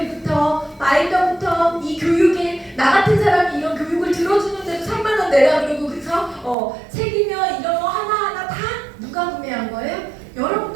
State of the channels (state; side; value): drops out; left; at 6.6 s